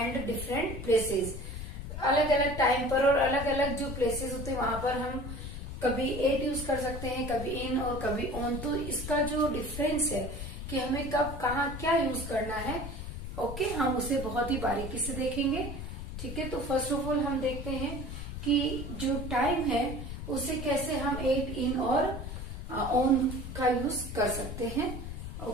different places. अलग अलग टाइम पर और अलग अलग जो प्लेसेस होते हैं वहां पर हम कभी एट यूज कर सकते हैं, कभी इन और कभी ऑन। तो इसका जो डिफरेंस है कि हमें कब कहाँ क्या यूज करना है, ओके, हम उसे बहुत ही बारीकी से देखेंगे। ठीक है, तो फर्स्ट ऑफ ऑल हम देखते हैं कि जो टाइम है उसे कैसे हम एट, इन और ऑन का यूज कर सकते हैं।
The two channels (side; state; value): left; noise; rumble, 7 dB below the sound